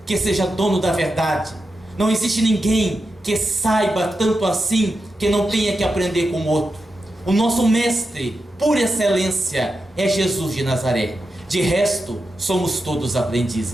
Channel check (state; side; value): normal; both; correlation 0.88